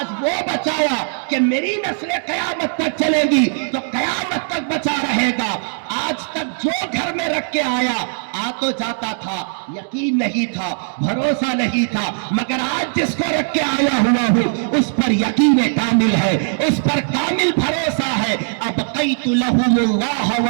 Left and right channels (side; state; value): left; silent; digital silence